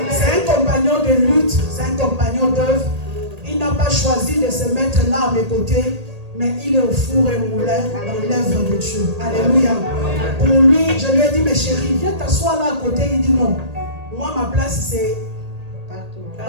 C'est un compagnon de lutte, c'est un compagnon d'œuvre. Il n'a pas choisi de se mettre là à mes côtés, mais il est au four et moulin dans l'œuvre de Dieu. Alléluia. Pour lui, je lui ai dit, mais chérie, viens t'asseoir là à côté. Il dit non. Moi, ma place, c'est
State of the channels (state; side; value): late; left; 1.8 ms